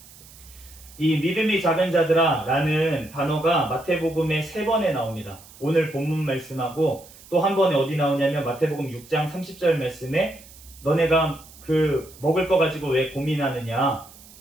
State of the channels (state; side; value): noise; right; hiss, 21 dB below the sound